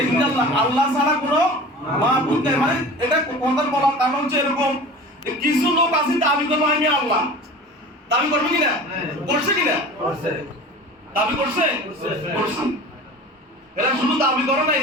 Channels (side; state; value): both; normal; correlation 0.38